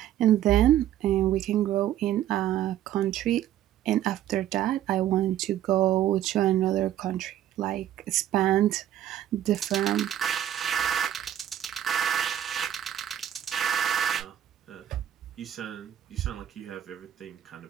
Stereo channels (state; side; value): quieter; left; 11.7 dB